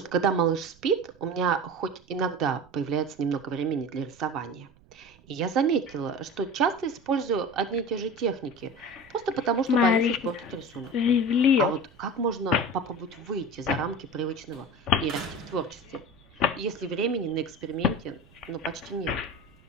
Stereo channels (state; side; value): noise; right; rumble, 28 dB below the sound